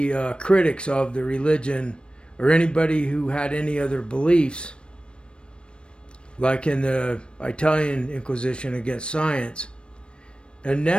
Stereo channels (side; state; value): right; late; 0.057 ms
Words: critics of the religion or anybody who had any other beliefs, like in the Italian Inquisition against science. And